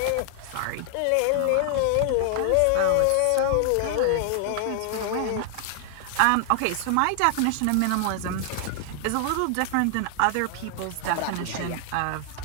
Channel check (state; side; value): different; both; correlation 0.00